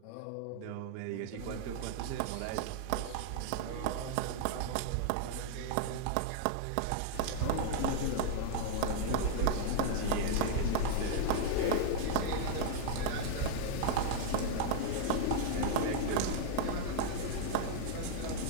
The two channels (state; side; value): different; both; correlation 0.00